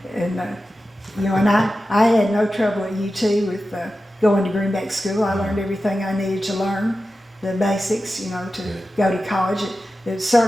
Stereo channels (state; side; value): normal; both; correlation 0.93